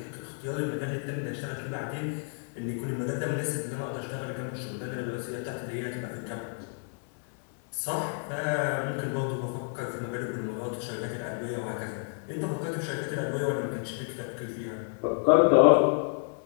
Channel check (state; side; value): silent; right; 58 dB below the other